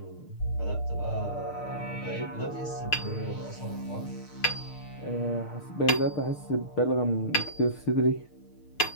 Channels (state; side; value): late; right; 6.6 ms